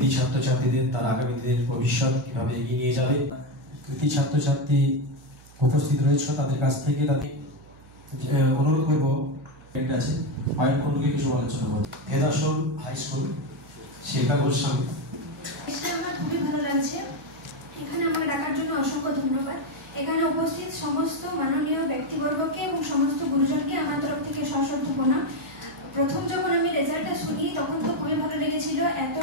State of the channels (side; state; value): right; noise; hum, 23 dB below the sound